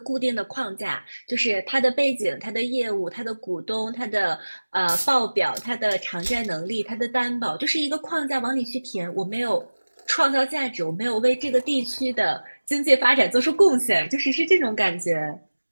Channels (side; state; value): both; inverted; correlation -1.00